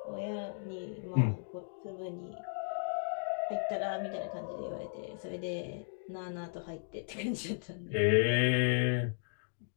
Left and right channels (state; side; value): silent; right; digital silence